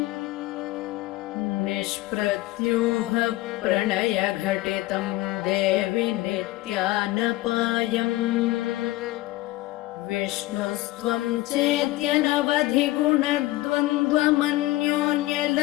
निष्प्रत्यूह प्रणयघटितं देवि नित्यानपायम् विष्णुस्त्वं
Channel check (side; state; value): right; quieter; 18.3 dB